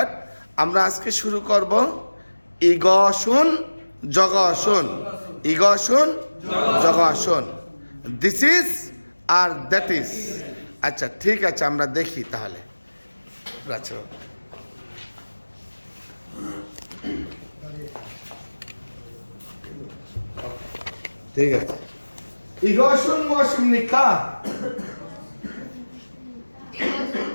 আমরা আজকে শুরু করব ইগসুন জগসুন। ইগসুন জগসুন, দিস ইজ আর দ্যাট ইজ। আচ্ছা ঠিক আছে, আমরা দেখি তাহলে। আচ্ছা ঠিক আছে। ইগসুন মুয়াশিম নিকা।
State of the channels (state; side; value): inverted; both; correlation -1.00